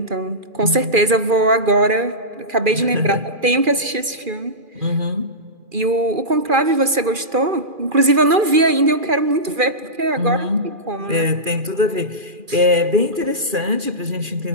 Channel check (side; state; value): left; late; 2.4 ms